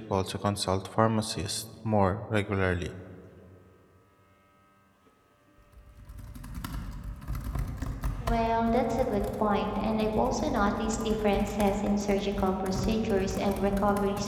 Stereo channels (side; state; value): both; identical; correlation 1.00